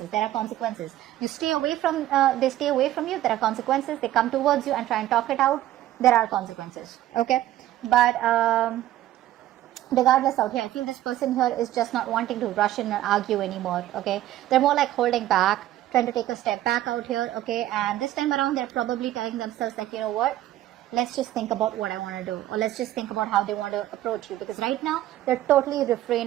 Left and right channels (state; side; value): quieter; left; 13.9 dB